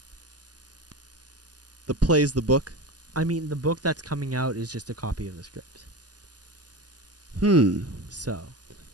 The play's the book? I mean, the book that's coming out is just a copy of the script. So.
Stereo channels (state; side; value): late; left; 0.69 ms